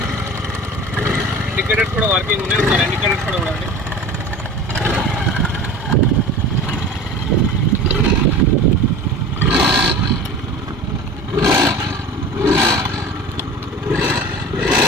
ఇండికేటర్స్ కూడా వర్కింగ్ ఉన్నాయి. ఒకసారి ఇండికేటర్స్ కూడా చూడండి.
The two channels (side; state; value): both; normal; correlation 0.38